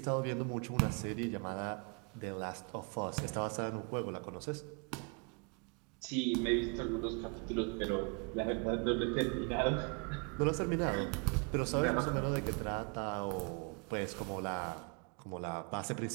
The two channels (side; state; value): left; quieter; 35.0 dB